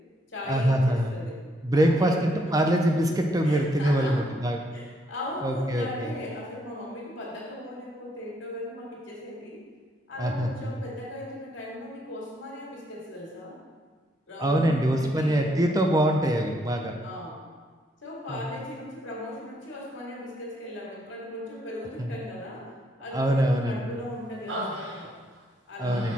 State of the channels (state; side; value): normal; both; correlation 0.73